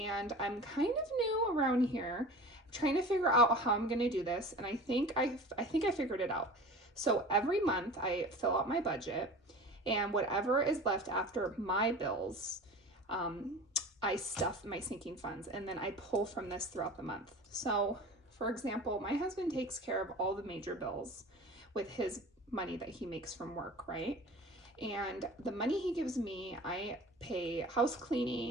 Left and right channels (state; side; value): normal; both; correlation 0.37